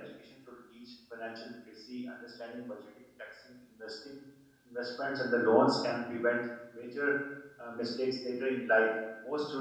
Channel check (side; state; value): both; identical; correlation 1.00